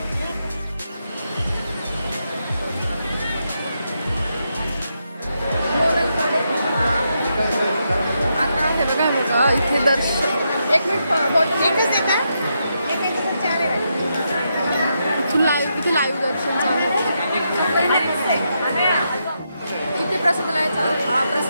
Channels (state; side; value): inverted; both; correlation -0.82